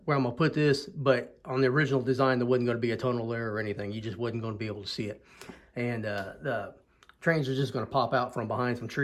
where I'm going to put this. But on the original design, there wasn't going to be a tunnel there or anything. You just wasn't going to be able to see it. And the trains are just going to pop out from behind some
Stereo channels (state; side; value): identical; both; correlation 1.00